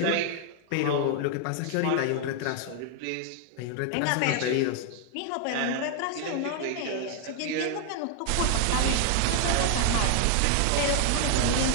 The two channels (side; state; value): both; different; correlation 0.00